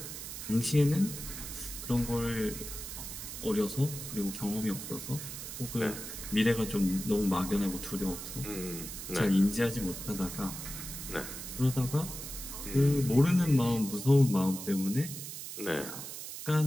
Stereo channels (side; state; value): right; noise; hiss, 9 dB below the sound